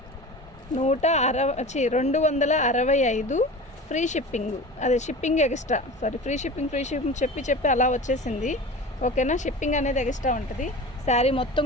ఫ్రీ షిప్పింగ్. అదే షిప్పింగ్ ఎక్స్ట్రా, ఫ్రీ షిప్పింగ్ చెప్పి అలా వచ్చేసింది. ఓకేనా, షిప్పింగ్ అనేది ఎక్స్ట్రా ఉంటుంది. శారీ మొత్తం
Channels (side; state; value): both; normal; correlation 0.34